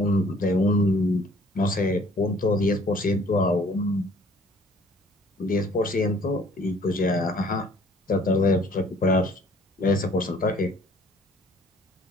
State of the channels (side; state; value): both; normal; correlation 0.56